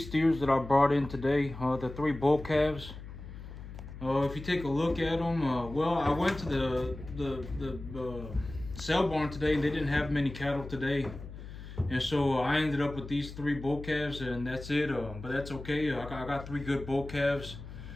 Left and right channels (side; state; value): left; noise; hum, 12 dB below the sound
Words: that I brought in today, the three bull calves. If you take a look at them, well, I went to the sale barn today and they didn't have many cattle today. And so I ended up with these three bull calves and that's it. But that's okay. I got three good bull calves.